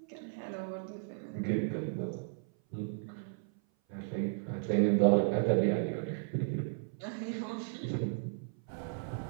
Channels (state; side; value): silent; left; 55 dB below the other